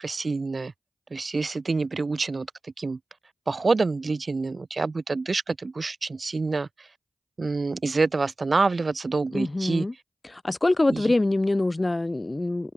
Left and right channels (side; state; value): both; normal; correlation 0.96